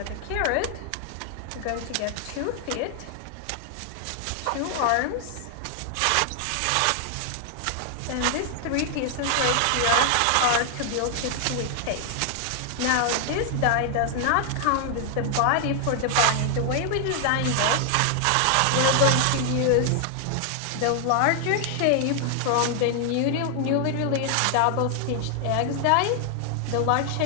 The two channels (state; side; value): different; both; correlation 0.00